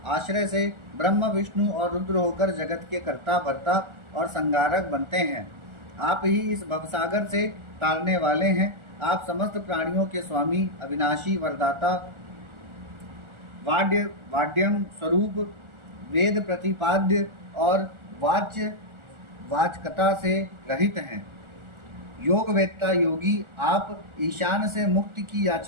आश्रय से ब्रह्म, विष्णु और रुद्र होकर जगत के कर्ता, भर्ता और संगारक बनते हैं। आप ही इस भवसागर से तारने वाले हैं। आप समस्त प्राणियों के स्वामी, अविनाशी, वरदाता, वाड्यम स्वरूप, वेद प्रतिपाद्य और वाचकता से रहित हैं। योगवेत्ता योगी, आप ईशान से मुक्ति की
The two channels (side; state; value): left; late; 1.4 ms